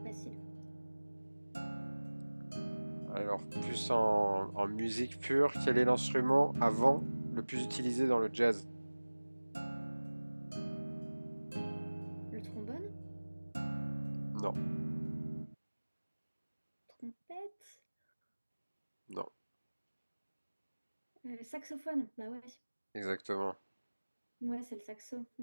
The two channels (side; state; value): both; inverted; correlation -1.00